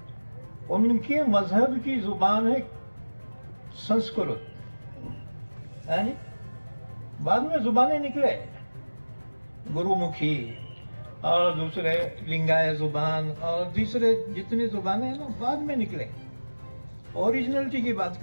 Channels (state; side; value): inverted; both; correlation -1.00